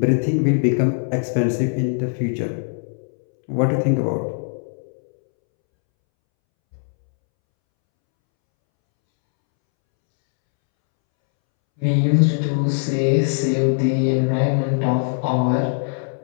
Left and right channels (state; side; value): silent; right; 65 dB below the other